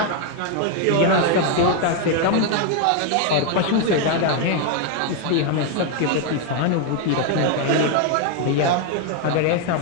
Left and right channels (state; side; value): different; both; correlation 0.01